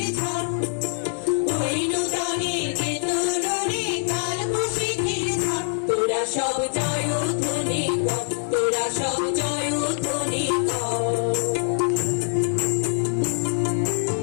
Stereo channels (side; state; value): right; silent; digital silence